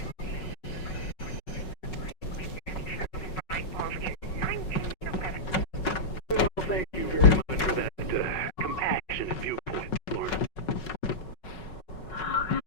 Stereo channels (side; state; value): right; late; 5.4 ms